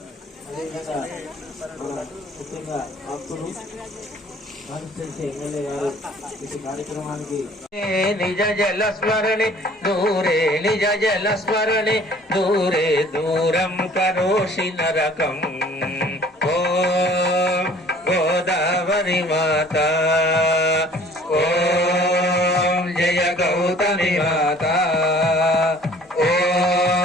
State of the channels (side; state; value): both; normal; correlation 0.52